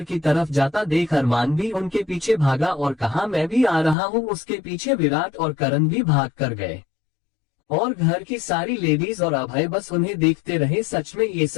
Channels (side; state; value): right; drops out; at 4.0 s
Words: की तरफ जाता देख अरमान भी उनके पीछे भागा और कहा, मैं भी आ रहा हूँ। उसके पीछे विराट और करण भी भाग कर गए और घर की सारी लेडीज और अभय बस उन्हें देखते रहे। सच में ये